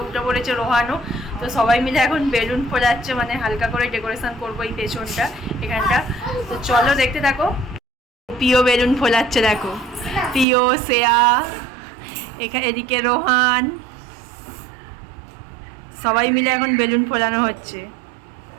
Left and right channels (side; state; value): left; drops out; at 10.5 s